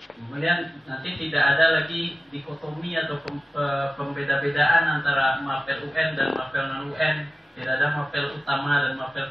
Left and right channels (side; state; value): both; normal; correlation 0.95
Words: Kemudian nanti tidak ada lagi dikotomi atau pembeda-bedaan antara mapel UN dan mapel non-UN. Tidak ada mapel utama dan mapel